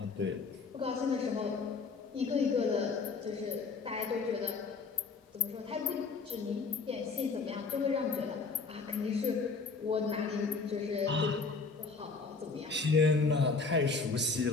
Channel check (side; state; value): right; quieter; 4.5 dB